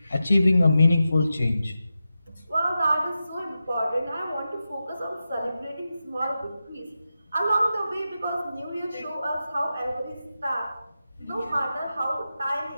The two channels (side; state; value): both; inverted; correlation -0.91